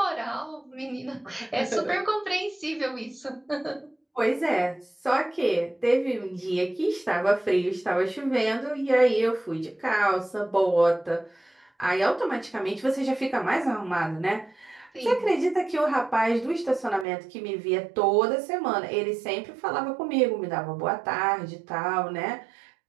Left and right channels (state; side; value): drops out; left; at 17.1 s